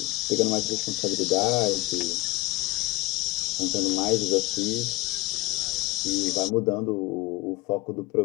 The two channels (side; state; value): right; quieter; 21.5 dB